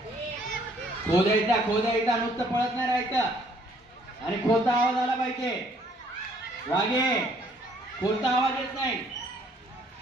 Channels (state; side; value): normal; both; correlation 0.63